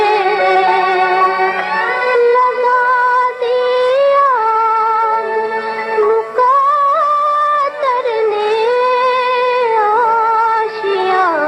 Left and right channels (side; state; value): both; identical; correlation 1.00